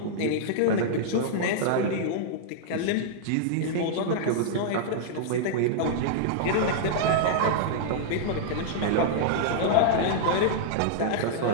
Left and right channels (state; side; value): different; both; correlation -0.02